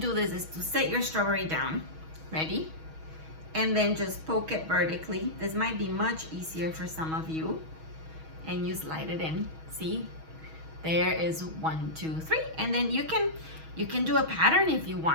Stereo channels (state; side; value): late; left; 6.3 ms